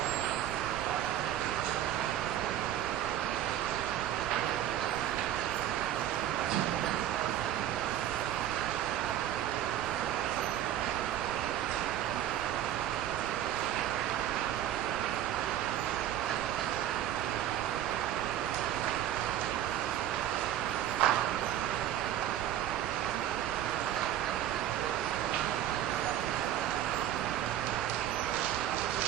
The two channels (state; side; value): quieter; left; 11.6 dB